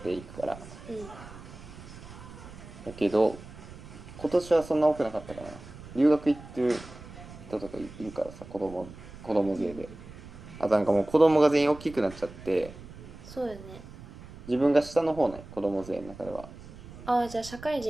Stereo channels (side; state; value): right; noise; rumble, 16 dB below the sound